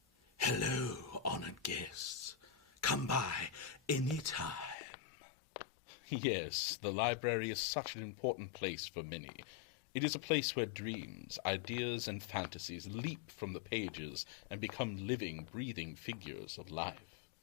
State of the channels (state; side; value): drops out; right; at 4.8 s